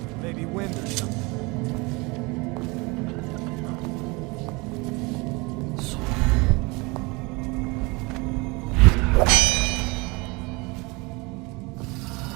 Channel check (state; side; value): quieter; left; 26.3 dB